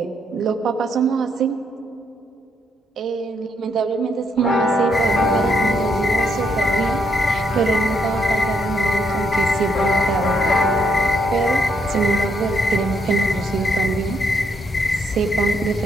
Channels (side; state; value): both; normal; correlation 0.74